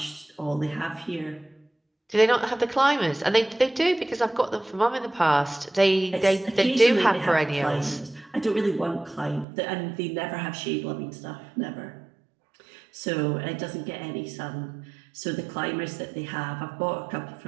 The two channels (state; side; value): drops out; left; at 9.5 s